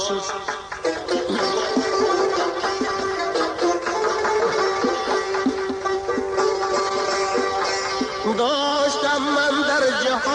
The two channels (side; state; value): both; identical; correlation 1.00